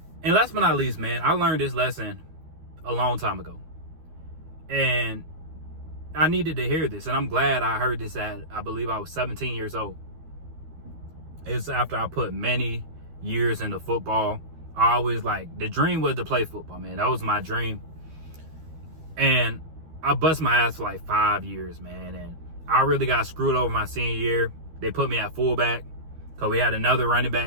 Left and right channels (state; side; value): late; left; 13 ms